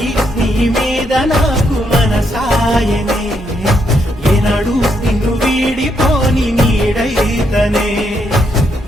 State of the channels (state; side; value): normal; both; correlation 0.77